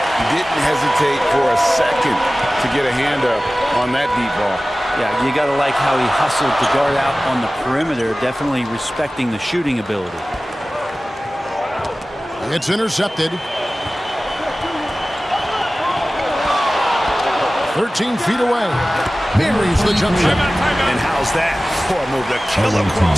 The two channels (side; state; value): both; normal; correlation 0.97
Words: Didn't hesitate for a second to get a hand up on that deep ball. Yeah, you got to like how he hustled to guard out on the perimeter, definitely respecting the shooting ability. It's intercepted. 13 feet away. Buries the jump shot. And how's that for a move? The killer